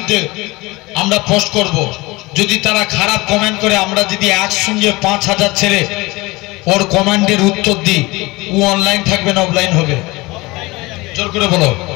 আমরা পোস্ট করব। যদি তারা খারাপ কমেন্ট করে, আমরা যদি একসঙ্গে 5000 ছেলে ওর কমেন্টের উত্তর দিই, ও অনলাইন থাকবে না অফলাইন হবে? জোর করে বলো।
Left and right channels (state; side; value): quieter; right; 22.4 dB